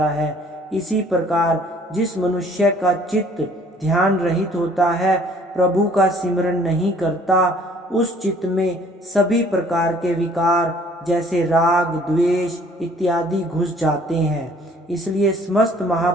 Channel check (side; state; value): both; normal; correlation 0.57